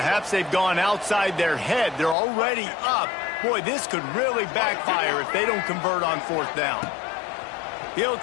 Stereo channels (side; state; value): right; drops out; at 2.1 s